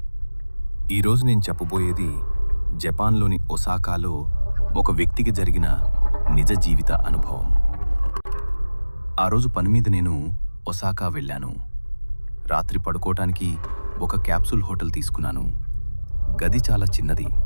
ఈరోజు నేను చెప్పబోయేది జపాన్లోని ఒసాకాలో ఒక వ్యక్తికి జరిగిన నిజ జీవిత అనుభవం. ఆ రోజు పని మీద నేను ఒసాకా వెళ్ళాను. రాత్రి పడుకోవటానికి ఒక క్యాప్సూల్ హోటల్ తీసుకున్నాను. గది చాలా చిన్నది,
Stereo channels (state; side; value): inverted; both; correlation -1.00